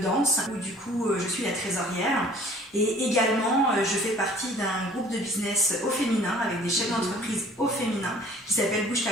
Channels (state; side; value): normal; both; correlation 0.52